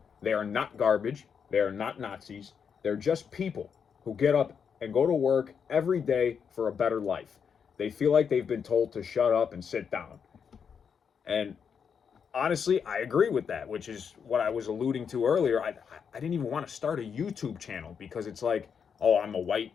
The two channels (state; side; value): quieter; right; 6.8 dB